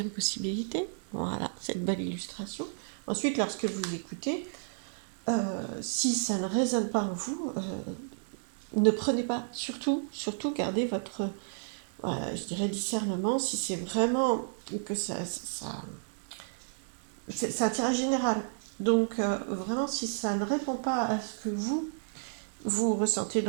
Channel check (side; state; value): left; silent; digital silence